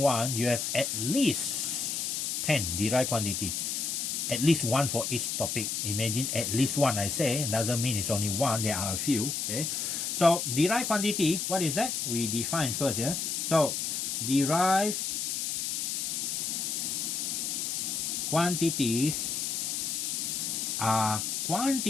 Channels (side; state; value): left; noise; hiss, 1 dB below the sound